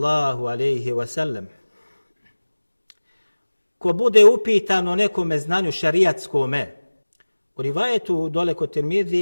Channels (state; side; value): inverted; both; correlation -1.00